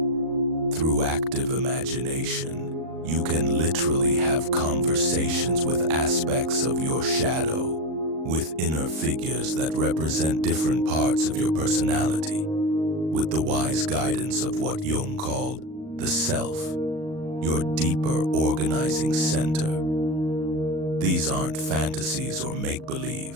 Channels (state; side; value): late; left; 38 ms